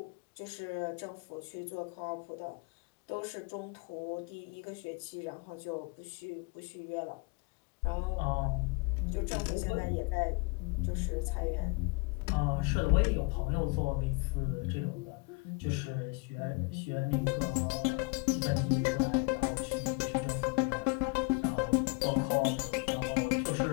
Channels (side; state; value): right; quieter; 28.5 dB